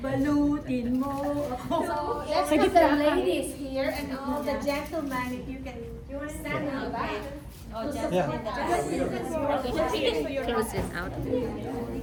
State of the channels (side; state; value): both; identical; correlation 1.00